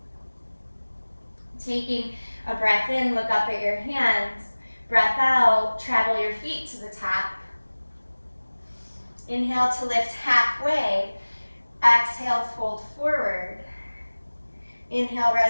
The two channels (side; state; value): both; inverted; correlation -1.00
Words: Taking a breath in, look up at your hands. Breath out, travel your feet to the top. Inhale to lift halfway. Exhale, fold forward. Inhale,